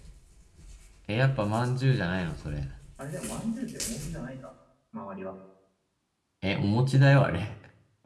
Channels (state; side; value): identical; both; correlation 1.00